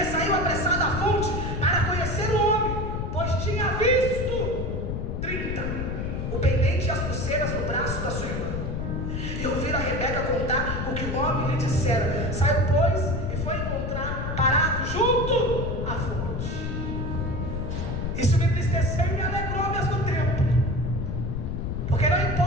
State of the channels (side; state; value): left; noise; rumble, 2 dB below the sound